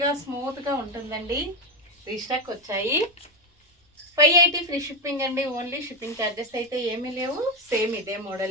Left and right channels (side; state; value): both; normal; correlation 0.10